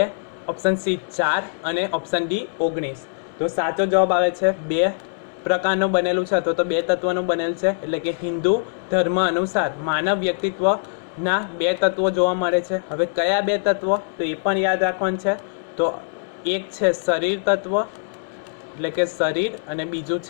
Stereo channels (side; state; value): right; silent; 64 dB below the other